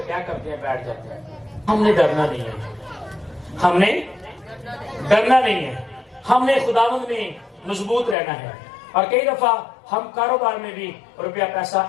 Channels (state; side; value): drops out; right; at 8.2 s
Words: کیا کرتے ہیں؟ بیٹھ جاتے ہیں. ہم نے ڈرنا نہیں ہے, ہم نے ڈرنا نہیں ہے, ہم نے خداوند میں مضبوط رہنا ہے. اور کئی دفعہ ہم کاروبار میں بھی روپیہ پیسہ